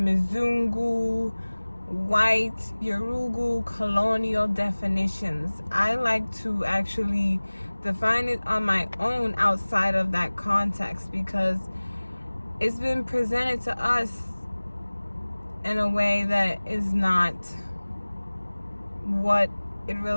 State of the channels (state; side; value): inverted; both; correlation -1.00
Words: white, Yorugu, colonial definitions. I like to actually define it on my own outside of that context, because it's been presented to us in a way that is not what it